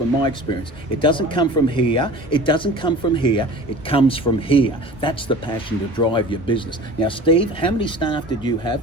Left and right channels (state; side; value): normal; both; correlation 0.40